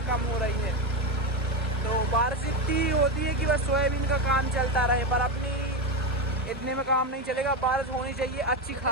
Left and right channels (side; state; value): both; normal; correlation 0.12